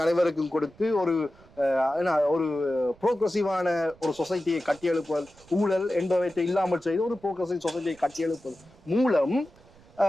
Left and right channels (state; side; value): noise; right; rumble, 26 dB below the sound